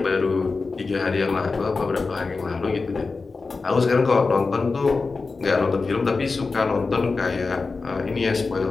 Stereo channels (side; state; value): right; quieter; 4.1 dB